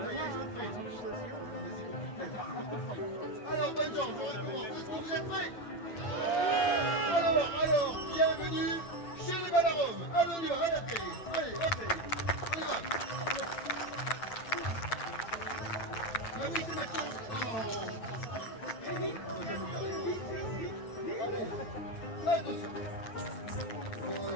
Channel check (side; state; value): right; late; 8.8 ms